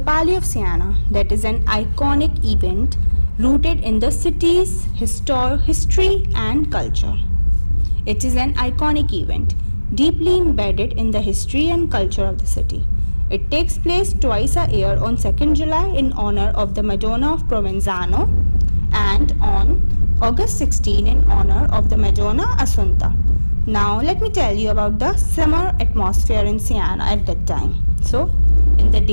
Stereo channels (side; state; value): both; inverted; correlation -1.00